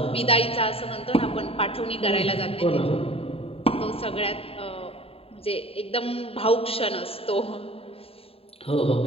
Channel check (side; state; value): right; late; 0.28 ms